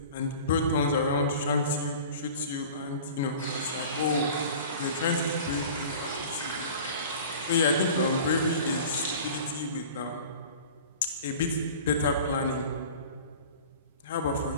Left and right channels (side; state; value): both; inverted; correlation -0.41